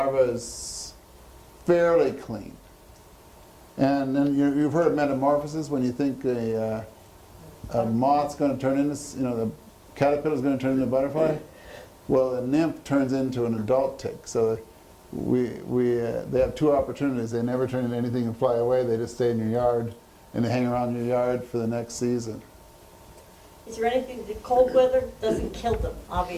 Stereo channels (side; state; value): both; identical; correlation 1.00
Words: is fairly clean. And then you've heard of metamorphosis, when you think a moth's going to turn into, the caterpillar's going to turn into a butterfly. Well, a nymph turns into an adult tick. So they have 2 opportunities. They never turn into anything and fly away. They just stay in your yard, and they hang around your yard for the next season. Is there anything, the cold weather doesn't kill them,